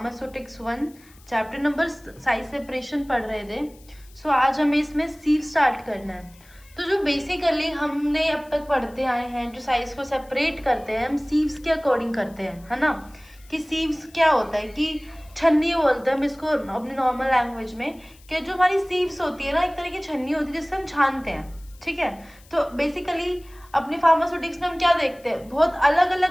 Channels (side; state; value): left; noise; hiss, 27 dB below the sound